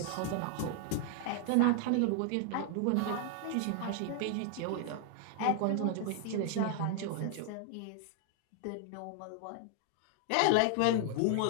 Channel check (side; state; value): both; different; correlation 0.00